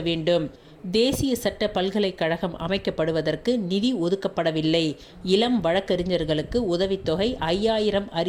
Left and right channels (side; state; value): both; identical; correlation 1.00